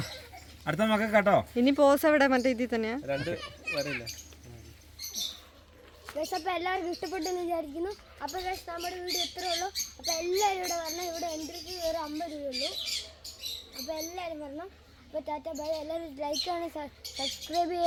അടുത്ത മക്കൾ കേട്ടോ ഇനി പോസ് എവിടെ മറ്റേ ഇതിൽ തന്നെയാ 2 വരയില്ല അപ്പോൾ എല്ലാവർക്കും ഇഷ്ടപ്പെട്ടെന്ന് വിചാരിക്കുന്നു അപ്പോൾ നമ്മുടെ വീഡിയോ ഇത്രേ ഉള്ളൂ അപ്പോൾ എല്ലാവരും ഇവിടെ വരണം ഇവിടെ എൻട്രിക്ക് ഒരു 50 രൂപയുള്ളൂ അപ്പോൾ എല്ലാവരും വരണം അപ്പോൾ ടാറ്റ ബൈ എല്ലാവരും ലൈക്ക് ചെയ്യണം സബ്സ്ക്രൈബ്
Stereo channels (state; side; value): identical; both; correlation 1.00